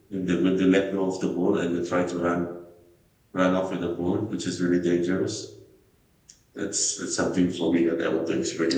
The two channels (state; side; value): identical; both; correlation 1.00